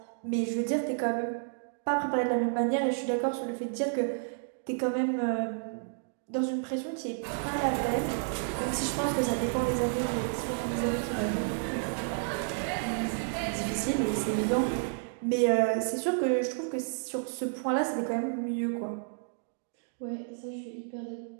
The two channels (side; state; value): left; silent; digital silence